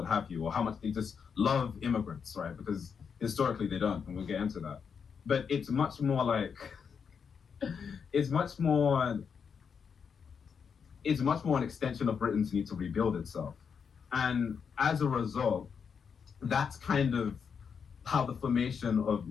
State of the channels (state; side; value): quieter; right; 6.5 dB